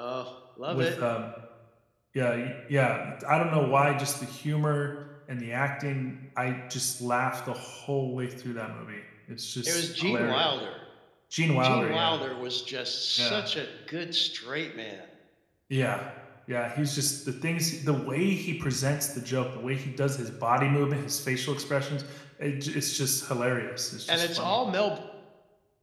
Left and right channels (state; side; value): identical; both; correlation 1.00